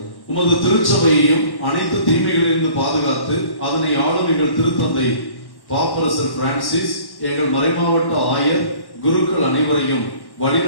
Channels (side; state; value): right; late; 1.1 ms